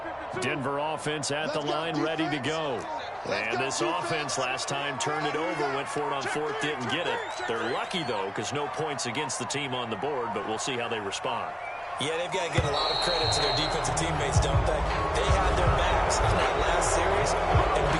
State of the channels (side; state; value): both; identical; correlation 1.00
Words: Denver offense at the line, ready to go. And this offense last time turned it over, went for it on 4th, didn't get it. They're lucky, though, because no points against the team on the board, but we'll see how they respond. Yeah, they've got to give a lot of credit to their defensive teammates, don't they? They had their backs in that last series, and